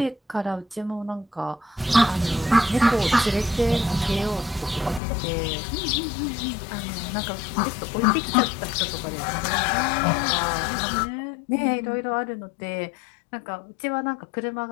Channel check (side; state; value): right; drops out; at 5.0 s